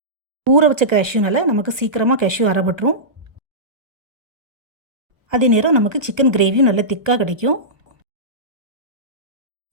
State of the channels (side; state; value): left; late; 1.3 ms